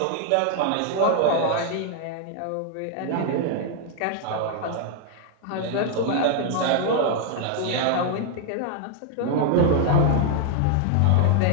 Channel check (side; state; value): both; different; correlation 0.00